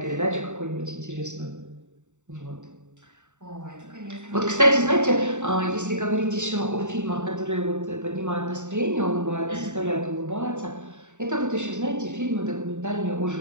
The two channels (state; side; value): late; left; 0.84 ms